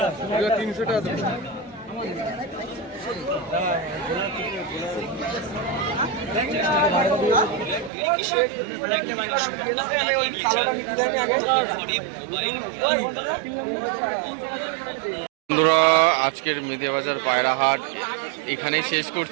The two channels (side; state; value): left; drops out; at 7.9 s